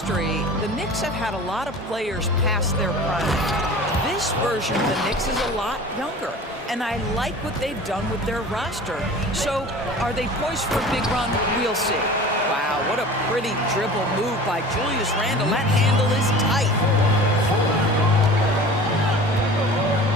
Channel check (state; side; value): normal; both; correlation 0.40